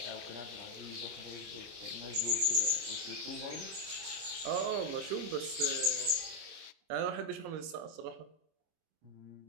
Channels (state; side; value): late; left; 25 ms